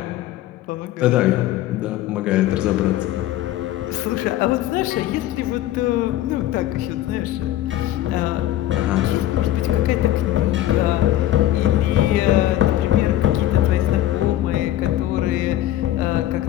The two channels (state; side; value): quieter; right; 13.6 dB